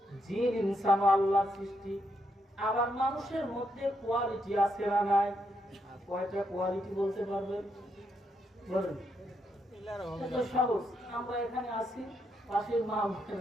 জিন ইনসান আল্লাহর সৃষ্টি। আবার মানুষের মধ্যে কোয়ালিটি আছে না নাই? কয়টা কোয়ালিটি বলতে পারবেন? বলেন। সহজ, আমরা এখানে আছি, পাশের মা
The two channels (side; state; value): both; normal; correlation 0.79